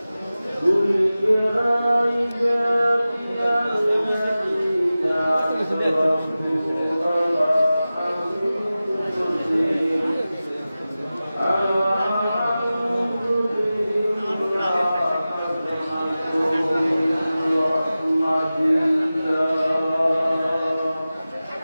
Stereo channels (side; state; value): both; inverted; correlation -0.96